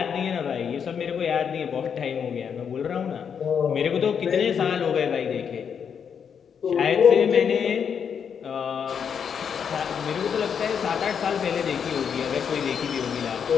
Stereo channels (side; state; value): right; quieter; 7.3 dB